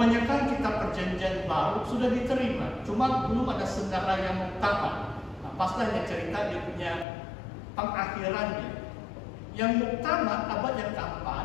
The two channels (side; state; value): right; drops out; at 7.1 s